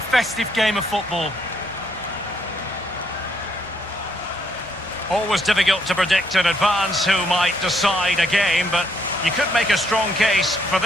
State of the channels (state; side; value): normal; both; correlation 0.72